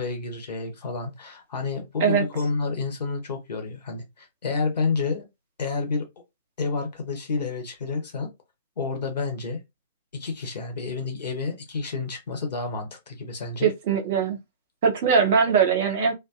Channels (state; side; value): inverted; both; correlation -0.41